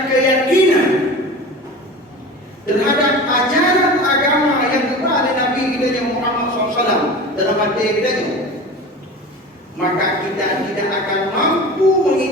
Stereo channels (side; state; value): both; normal; correlation 0.34